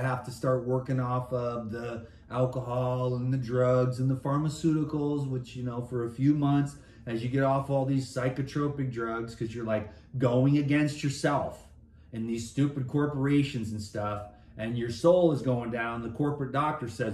to start working off of the alcohol and the drugs and the pharmaceuticals, which, you know, for a few months, as you get off all these psychotropic drugs, because you're like going against yourself and these stupid corporations and stuff, and your soul is going down, the corporate doctor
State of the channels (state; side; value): identical; both; correlation 1.00